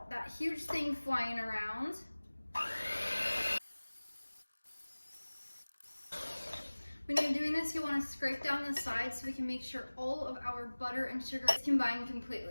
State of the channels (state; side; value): inverted; both; correlation -1.00